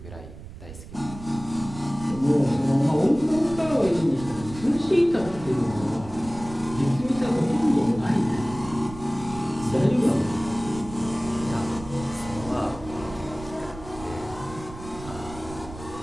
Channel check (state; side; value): noise; right; rumble, 14 dB below the sound